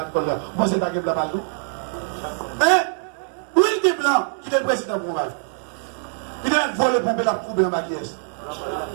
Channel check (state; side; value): silent; left; digital silence